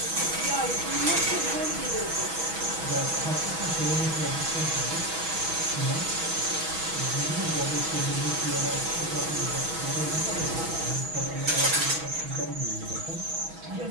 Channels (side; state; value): left; late; 6.2 ms